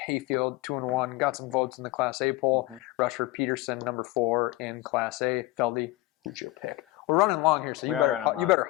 Hayfield 2-1. Got some votes in the Class A poll. Rushford Peterson number 4 in Class A. Feldy, who's your pick? We're running long here, so you better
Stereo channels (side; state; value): right; quieter; 18.6 dB